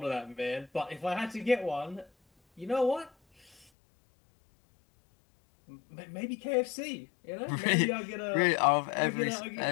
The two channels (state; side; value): drops out; right; at 3.7 s